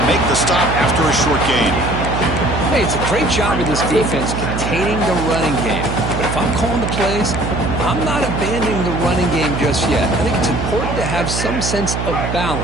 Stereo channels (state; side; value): noise; right; hum, 3 dB below the sound